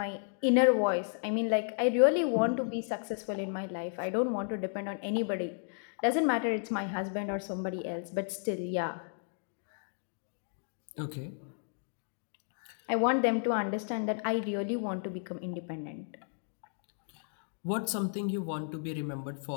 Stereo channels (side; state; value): right; silent; digital silence